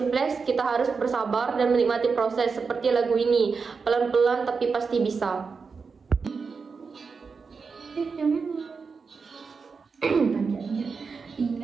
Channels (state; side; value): quieter; left; 5.1 dB